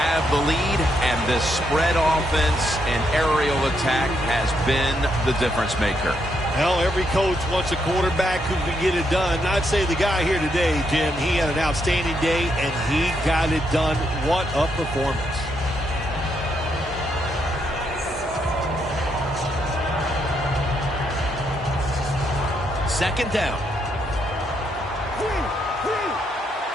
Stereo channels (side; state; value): both; normal; correlation 0.77